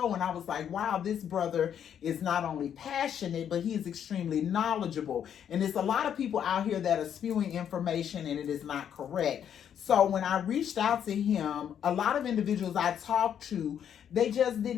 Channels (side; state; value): right; quieter; 9.0 dB